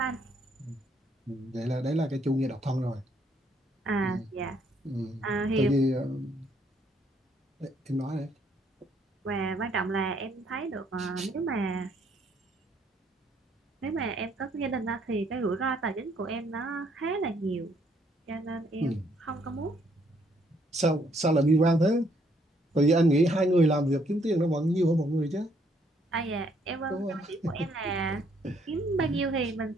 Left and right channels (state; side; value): normal; both; correlation 0.69